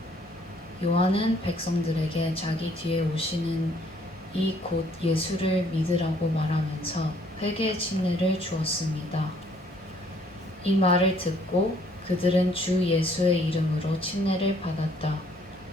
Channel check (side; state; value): both; normal; correlation 0.63